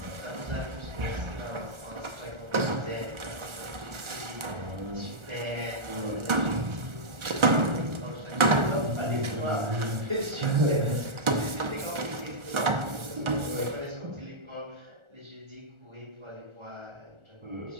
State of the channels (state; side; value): late; left; 1.4 ms